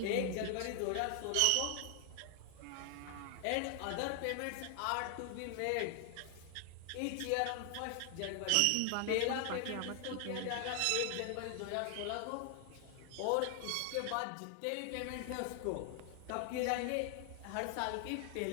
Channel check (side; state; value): both; different; correlation 0.00